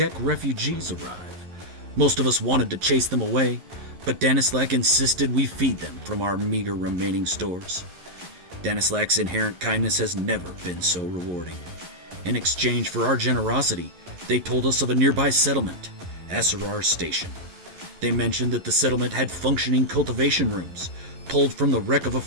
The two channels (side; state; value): left; late; 11 ms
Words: refugees arrive. Most of us wanted to chase them away, but Danislac insisted we feed them from our meager remaining stores. Danislac's inherent kindness has never been so rewarding. In exchange for our generosity, they told us of a nearby settlement, Asurar Station. They mentioned that the settlement had functioning cultivation rooms, pulled from the wreck of a